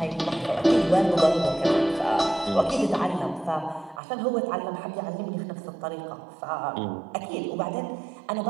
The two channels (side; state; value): left; drops out; at 4.0 s